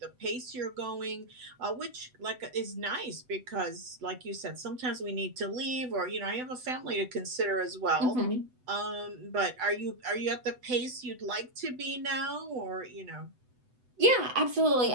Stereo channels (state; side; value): late; left; 8.0 ms